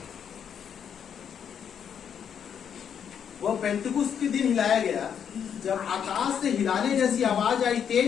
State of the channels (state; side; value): quieter; right; 8.1 dB